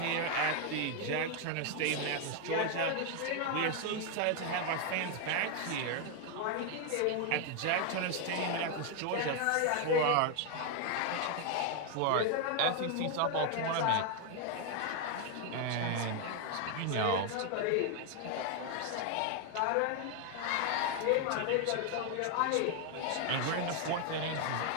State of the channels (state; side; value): different; both; correlation 0.01